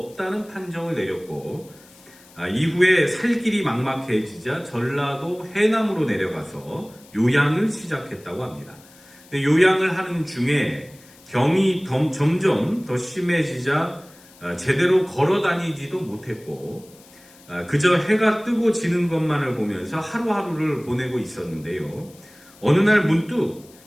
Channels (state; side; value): noise; left; hiss, 25 dB below the sound